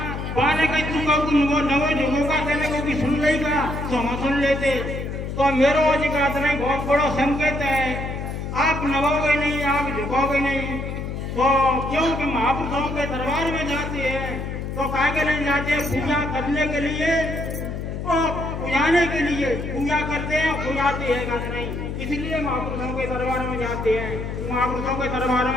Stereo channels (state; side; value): noise; left; hum, 5 dB below the sound